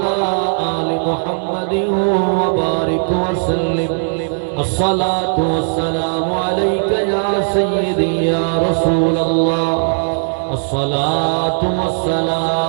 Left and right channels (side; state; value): left; silent; 63 dB below the other